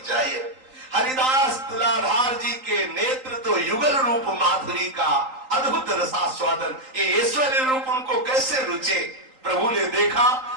हरिदास तुलाधार जी के नेत्र तो युगल रूप माधुरी का अद्भुत रसास्वादन, ये ऐश्वर्य रूप उनको कैसे रुचे। प्रभु ने देखा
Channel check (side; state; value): left; late; 3.8 ms